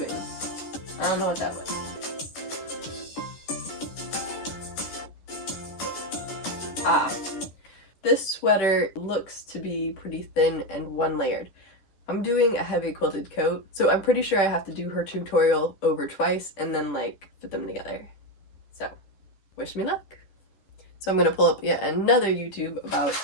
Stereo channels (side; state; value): right; late; 10 ms